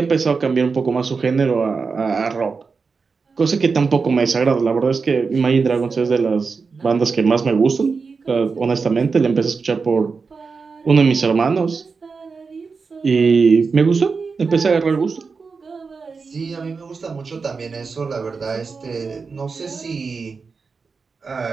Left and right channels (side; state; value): left; quieter; 4.9 dB